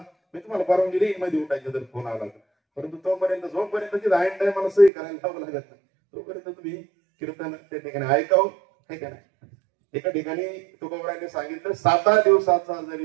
मी तुम्हाला परवानगी देईन मध्ये उठायचं जर फोन आला तर, परंतु तोपर्यंत जोपर्यंत ऐन टाइम मला सही करायला लावं लागत नाही तोपर्यंत तुम्ही कीर्तन त्या ठिकाणी ऐकावं, आहे का नाही. एका ठिकाणी तुकोबराने सांगितलं 7 दिवसाचा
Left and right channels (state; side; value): drops out; left; at 4.9 s